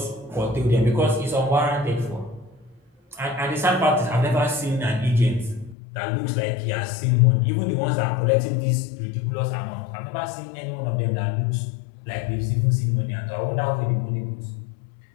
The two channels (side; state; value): right; drops out; at 5.8 s